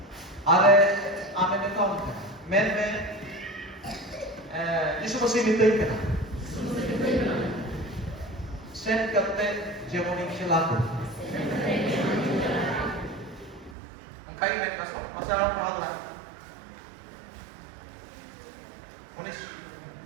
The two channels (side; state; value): left; drops out; at 13.8 s